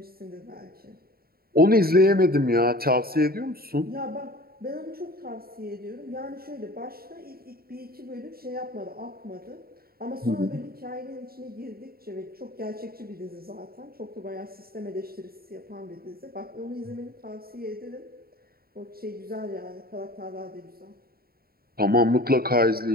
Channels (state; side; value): late; left; 0.44 ms